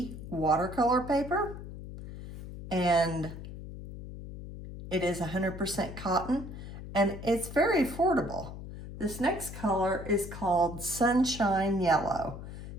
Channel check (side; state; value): left; noise; hum, 11 dB below the sound